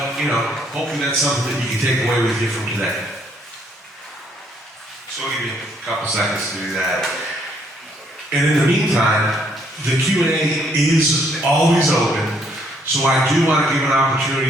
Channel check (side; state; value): both; normal; correlation 0.68